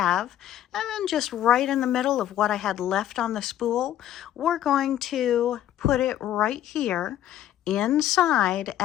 And then just right in the middle of what I had left on the spool, we're going to put it right here inside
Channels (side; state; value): right; quieter; 11.9 dB